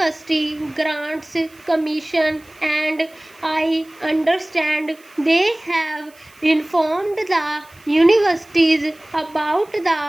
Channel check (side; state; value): right; noise; hiss, 28 dB below the sound